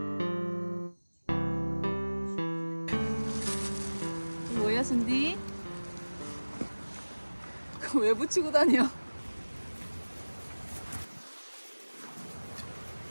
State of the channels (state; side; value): inverted; both; correlation -1.00